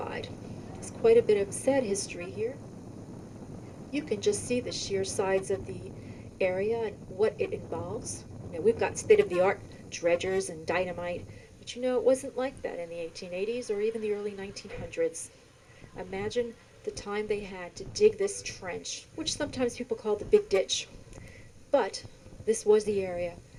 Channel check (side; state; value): both; identical; correlation 1.00